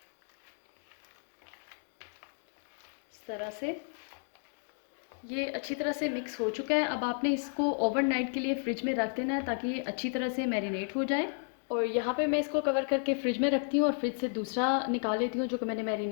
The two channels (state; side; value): silent; right; 56 dB below the other